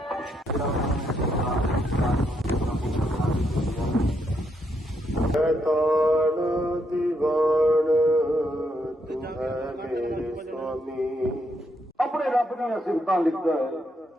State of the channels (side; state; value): both; normal; correlation 0.77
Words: ਤਾਣ ਦੀਵਾਨ ਤੂੰ ਹੈ ਮੇਰੇ ਸੁਆਮੀ। ਆਪਣੇ ਰੱਬ ਦੀਆਂ ਸਿਫਤਾਂ ਲਿਖਦਾ ਹੈ,